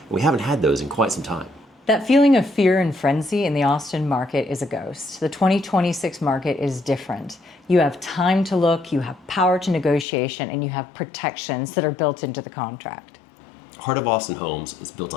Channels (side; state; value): right; drops out; at 10.1 s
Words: And we haven't had those in quite some time. That feeling of fear and frenzy in the Austin market is a ghost. The 2026 market is different. You have time to look, you have power to negotiation, and you have protections that are built into the contract. Heart of Austin Homes is built